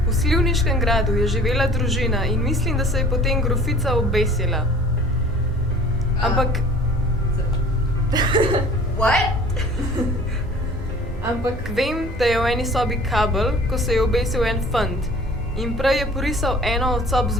V Slivniškem gradu je živela družina in mislim, da se je potem grofica obesila. Ampak... What? Ampak vem, da je v eni sobi kabel, ko se je obesil en fant. In prej je porisal eno od sob z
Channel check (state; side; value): normal; both; correlation 0.48